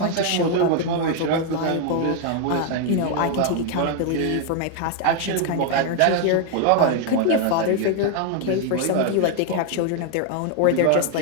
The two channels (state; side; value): different; both; correlation 0.00